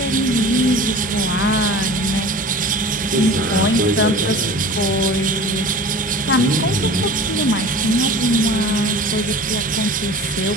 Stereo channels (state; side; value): normal; both; correlation 0.38